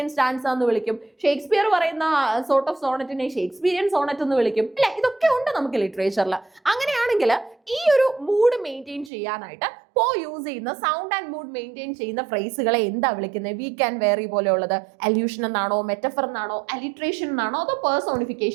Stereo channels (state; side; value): drops out; left; at 9.1 s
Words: സ്റ്റാൻസ എന്ന് വിളിക്കും. ഷേക്സ്പിയർ പറയുന്ന സോർട്ട് ഓഫ് സോണറ്റിനെ ഷേക്സ്പിയറിയൻ സോണറ്റ് എന്ന് വിളിക്കും, അല്ലെ. ഇതൊക്കെ ഉണ്ട് നമുക്ക് ലിറ്ററേച്ചറിൽ. അങ്ങനെയാണെങ്കിൽ ഈ ഒരു മൂഡ് മെയിൻറ്റെയിൻ ചെയ്യാനായിട്ട് പോ യൂസ് ചെയ്യുന്ന സൗണ്ട് ആൻഡ് മൂഡ് മെയിൻറ്റെയിൻ ചെയ്യുന്ന ഫ്രേസുകളെ എന്താ വിളിക്കുന്നത്? വീക്ക് ആൻഡ് വേറി പോലെയുള്ളത് അല്യൂഷൻ എന്നാണോ, മെറ്റഫർ എന്നാണോ, അലിട്രേഷൻ എന്നാണോ, അതോ